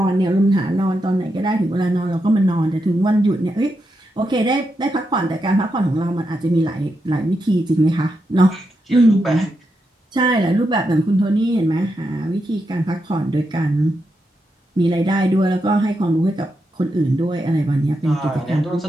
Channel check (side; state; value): both; normal; correlation 0.85